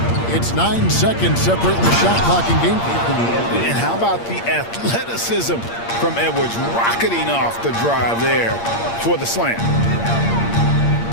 It's 9 seconds separating the shot clock and game. And how about the athleticism from Edwards rocketing off the drive there for the slam.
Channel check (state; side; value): late; right; 8.6 ms